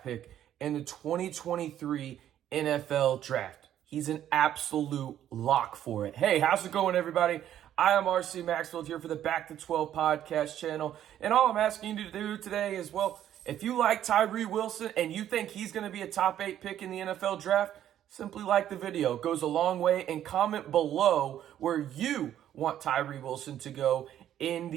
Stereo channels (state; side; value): quieter; left; 11.1 dB